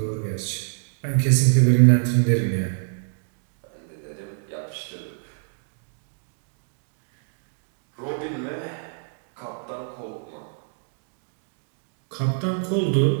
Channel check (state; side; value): silent; left; digital silence